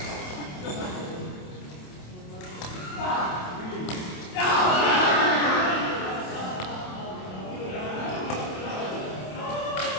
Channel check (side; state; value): right; late; 27 ms